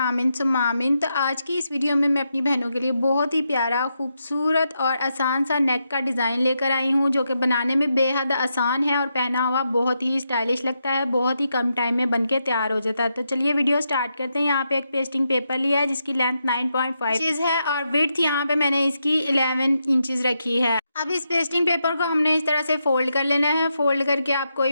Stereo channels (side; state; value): both; inverted; correlation -0.84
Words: सुम्मा आमीन। तो आज की इस वीडियो में मैं अपनी बहनों के लिए बहुत ही प्यारा, खूबसूरत और आसान सा नेक का डिज़ाइन लेकर आई हूँ, जो कि बनाने में बेहद आसान है और पहना हुआ बहुत ही स्टाइलिश लगता है, बहुत ही कम टाइम में बन के तैयार हो जाता है। तो चलिए वीडियो स्टार्ट करते हैं। यहाँ पे एक पेस्टिंग पेपर लिया है जिसकी लेंथ 9.5 इंचज़ है और विड्थ यहाँ पे मैंने इसकी 11 इंचज़ रखी है। अब इस पेस्टिंग पेपर को हमने इस तरह से फ़ोल्ड कर लेना है। फ़ोल्ड करके आप कोई